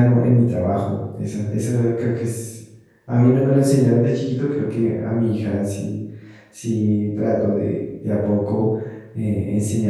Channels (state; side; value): identical; both; correlation 1.00